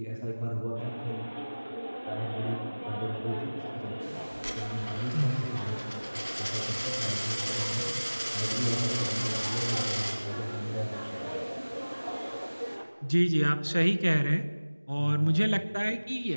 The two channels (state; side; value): inverted; both; correlation -1.00